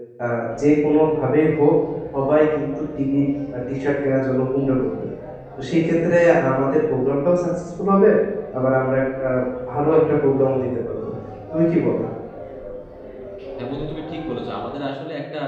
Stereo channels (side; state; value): both; identical; correlation 1.00